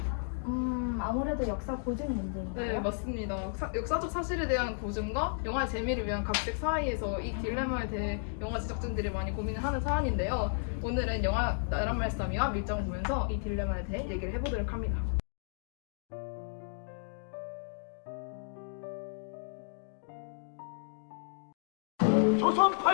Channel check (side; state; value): right; silent; digital silence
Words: 아무래도 역사 고증 문제인가요? 네, 맞습니다. 역사적 사실에 대한 고증과 영화의 재미를 위한 각색 사이에서 이 딜레마에 대해 영화 제작진들이 많이 고민을 하는 사안인데요. 오늘은 영화 나란 말싸미와 밀정을 보면서 이 딜레마에 대해 얘기를 해보도록 합니다. 조선